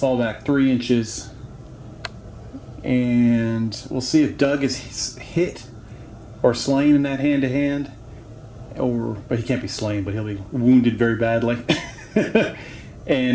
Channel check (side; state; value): both; identical; correlation 1.00